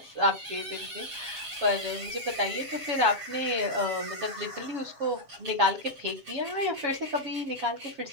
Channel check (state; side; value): late; left; 7.5 ms